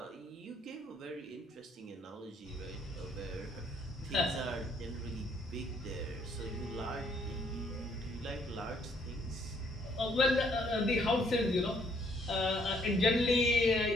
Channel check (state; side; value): normal; both; correlation 0.67